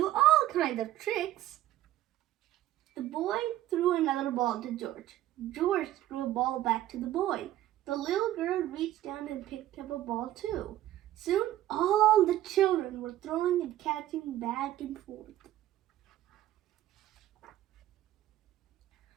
all kinds of tricks. The boy threw another ball to George. George threw a ball back to the boy. The little girl reached down and picked up a ball too. Soon all the children were were throwing and catching back and forth.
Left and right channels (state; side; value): quieter; left; 13.8 dB